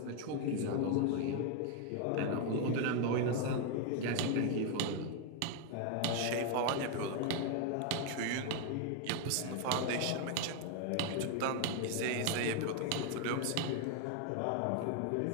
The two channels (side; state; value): both; different; correlation 0.01